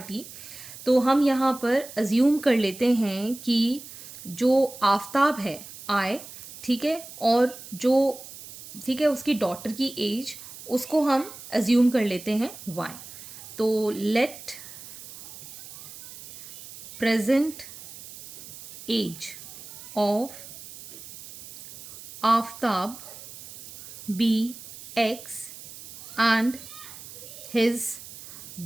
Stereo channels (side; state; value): right; noise; hiss, 15 dB below the sound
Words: तो हम यहाँ पर assume कर लेते हैं कि जो आफ्ताब है आए, ठीक है, और जो ठीक है उसकी डॉटर की एज उसको हम अज्यूम कर लेते हैं y. तो let present age of Aftab be x and his